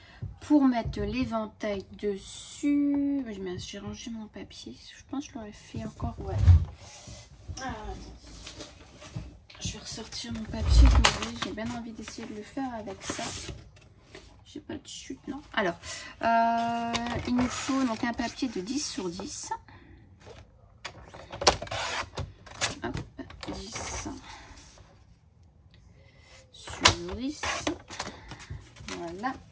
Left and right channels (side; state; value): both; identical; correlation 1.00